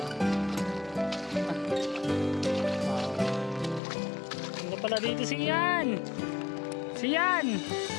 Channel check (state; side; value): drops out; right; at 3.8 s